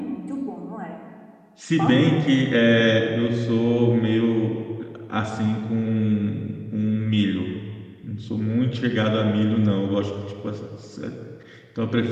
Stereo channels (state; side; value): identical; both; correlation 1.00